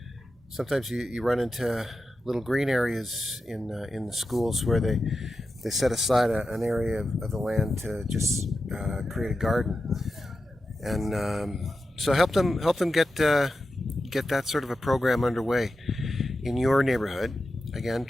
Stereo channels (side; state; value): both; normal; correlation 0.91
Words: Sometimes you run into little green areas in the schools where they set aside an area of the land to just create a garden, and so help them get that sort of a program underway in your neighborhood. Again,